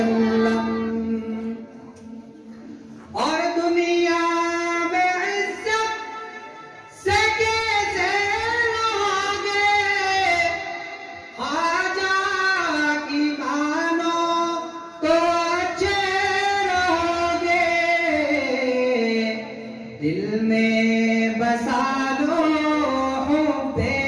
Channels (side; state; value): both; identical; correlation 1.00